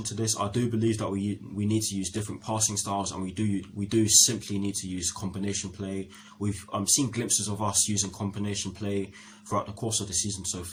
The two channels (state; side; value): identical; both; correlation 1.00